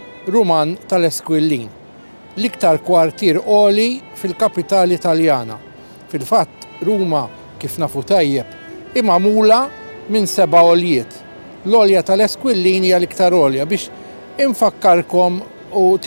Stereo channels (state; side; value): inverted; both; correlation -1.00